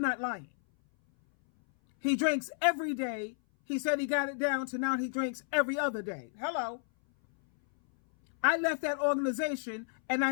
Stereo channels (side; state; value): right; silent; 57 dB below the other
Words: not lying. He drinks every day. He said he got it down to now he drinks every other day. Hello. I left that organization and I